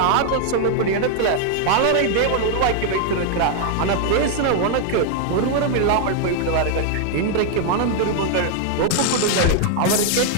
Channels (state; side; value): different; both; correlation 0.00